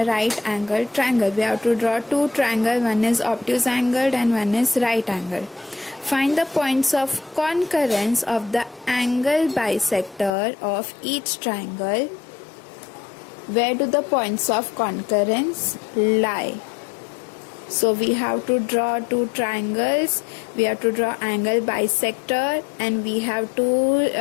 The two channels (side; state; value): right; drops out; at 10.3 s